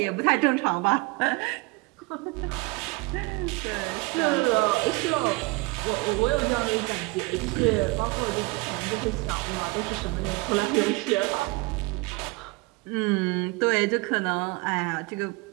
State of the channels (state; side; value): quieter; left; 25.2 dB